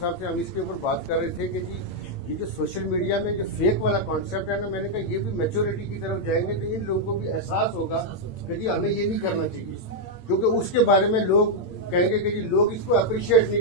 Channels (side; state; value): right; late; 8.7 ms